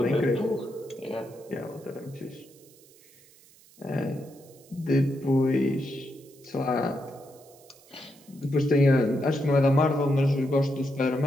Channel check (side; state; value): right; noise; hiss, 26 dB below the sound